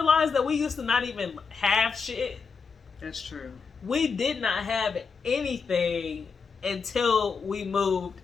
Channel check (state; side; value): quieter; right; 5.3 dB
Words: that we used to not even have shit? That's true. We did not have anything until we moved